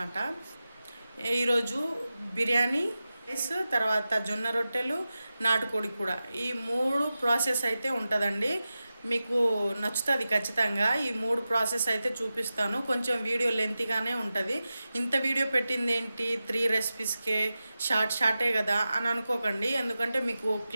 ఈరోజు బిర్యానీ రైస్, తర్వాత జొన్న రొట్టెలు, నాటుకోడి కూడా, ఈ 3 ప్రాసెస్ అయితే ఉంటుందండి. మీకు నచ్చుతుంది ఖచ్చితంగా. ఈ 3 ప్రాసెస్ అయితే చూపిస్తాను. కొంచెం వీడియో లెంతీగానే ఉంటుంది. ఇంత వీడియో పెట్టింది ఏంటి 3 రెసిపీస్కే, షార్టే కదా అని అనుకోకండి. ఎందుకంటే మీకు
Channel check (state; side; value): inverted; both; correlation -0.94